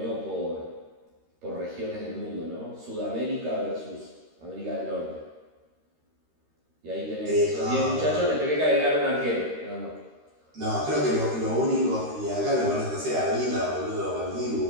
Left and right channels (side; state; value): left; late; 13 ms